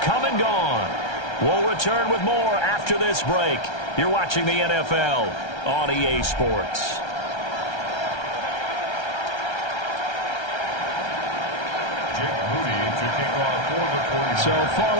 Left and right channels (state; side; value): late; right; 1.3 ms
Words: come and gone. We'll return with more after this break. You're watching the NFL on EA Sports. So